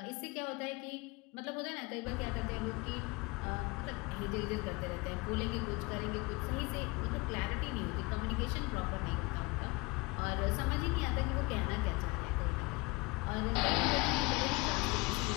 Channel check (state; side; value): quieter; right; 24.5 dB